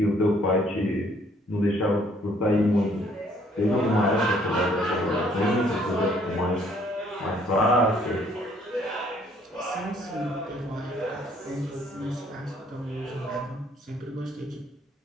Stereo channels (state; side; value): normal; both; correlation 0.63